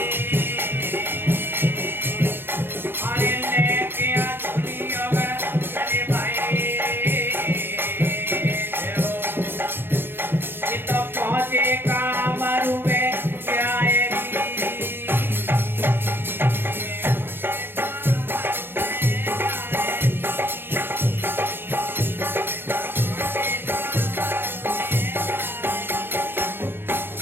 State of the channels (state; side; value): late; left; 0.099 ms